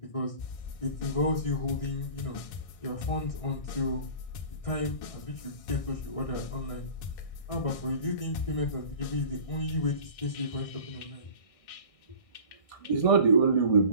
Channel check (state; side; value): late; right; 1.6 ms